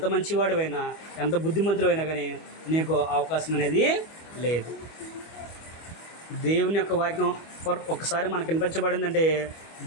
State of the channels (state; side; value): late; right; 25 ms